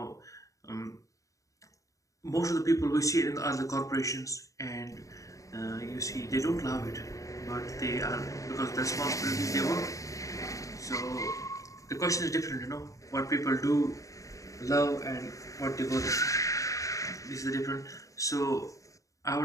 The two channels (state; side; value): late; right; 0.16 ms